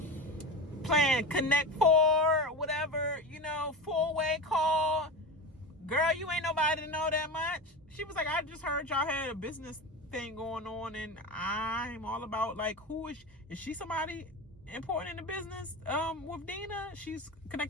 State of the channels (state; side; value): normal; both; correlation 0.25